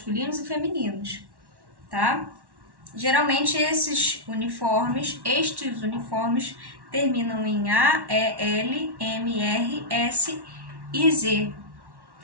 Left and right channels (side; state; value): left; late; 1.1 ms